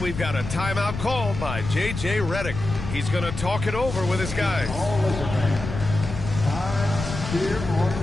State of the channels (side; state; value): left; noise; rumble, 7 dB below the sound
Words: got a timeout called by J.J. Redick. He's going to talk it over with his guys.